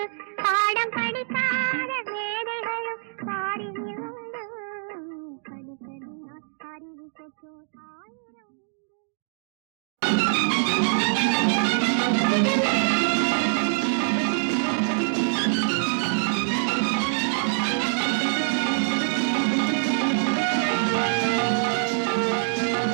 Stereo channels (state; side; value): silent; left; digital silence